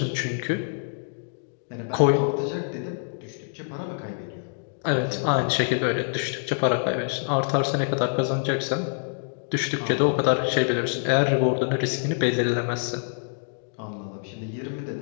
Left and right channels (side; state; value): right; silent; digital silence